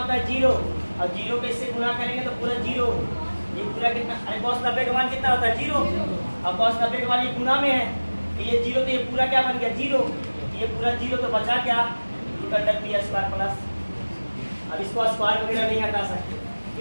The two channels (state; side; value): inverted; both; correlation -1.00